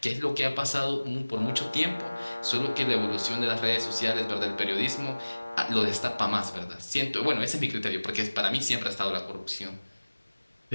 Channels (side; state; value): both; inverted; correlation -1.00